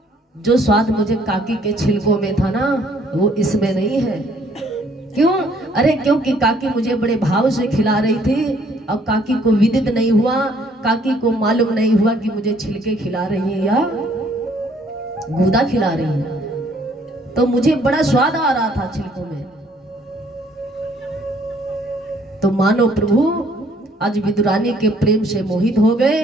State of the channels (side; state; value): both; normal; correlation 0.63